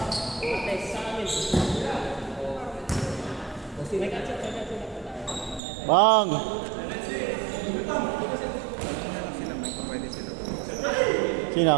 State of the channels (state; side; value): drops out; left; at 5.6 s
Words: Bang! Sila may pwede sila.